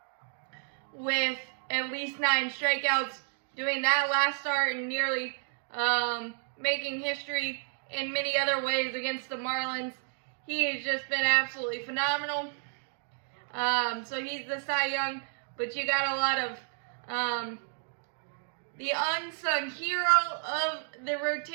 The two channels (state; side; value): silent; left; 57 dB below the other